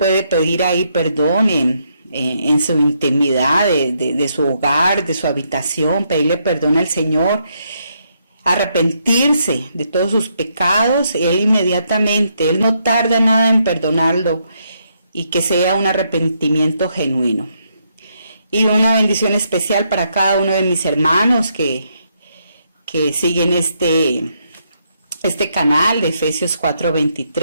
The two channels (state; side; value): inverted; both; correlation -0.76